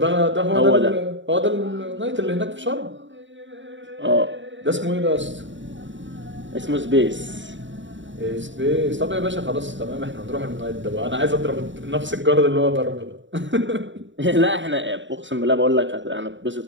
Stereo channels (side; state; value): left; late; 0.54 ms